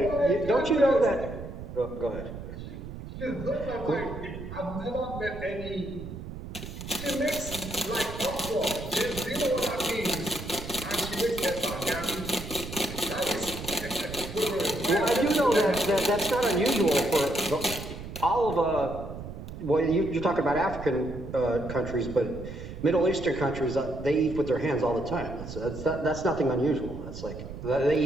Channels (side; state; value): right; noise; rumble, 10 dB below the sound